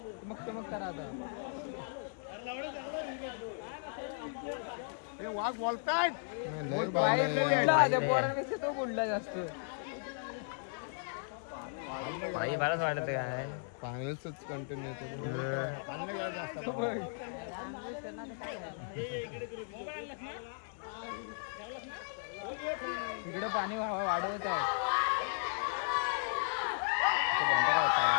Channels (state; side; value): silent; right; 54 dB below the other